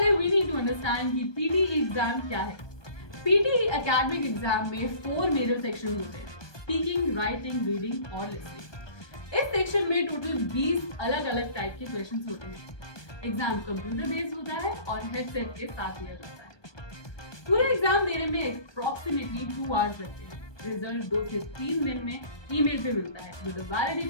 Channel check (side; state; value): right; late; 1.2 ms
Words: we need to understand कि पीटीई एग्जाम क्या है। पीटीई एकेडमिक एग्जाम में 4 मेजर सेक्शन होते हैं, स्पीकिंग, राइटिंग, रीडिंग और लिसनिंग। इस सेक्शन में टोटल 20 अलग अलग टाइप के क्वेश्चंस होते हैं। एग्जाम कंप्यूटर बेस्ड होता है और हेडसेट के साथ लिया जाता है। पूरे एग्जाम देने में अप्रॉक्सीमेटली 2 आवर्स लगते हैं। रिजल्ट 2 से 3 दिन में ईमेल पे मिलता है with a